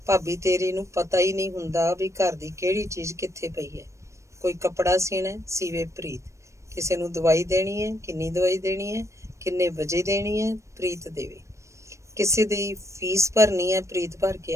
ਭਾਬੀ ਤੇਰੀ ਨੂੰ ਪਤਾ ਹੀ ਨਹੀਂ ਹੁੰਦਾ ਵੀ ਘਰ ਦੀ ਕਿਹੜੀ ਚੀਜ਼ ਕਿੱਥੇ ਪਈ ਹੈ। ਕੋਈ ਕੱਪੜਾ ਸੀਣਾ, ਸੀਵੇ ਪ੍ਰੀਤ। ਕਿਸੇ ਨੂੰ ਦਵਾਈ ਦੇਣੀ ਹੈ, ਕਿੰਨੀ ਦਵਾਈ ਦੇਣੀ ਹੈ, ਕਿੰਨੇ ਵਜੇ ਦੇਣੀ ਹੈ, ਪ੍ਰੀਤ ਦੇਵੇ। ਕਿਸੇ ਦੀ ਫੀਸ ਭਰਨੀ ਹੈ, ਪ੍ਰੀਤ ਭਰ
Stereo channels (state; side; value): late; left; 0.14 ms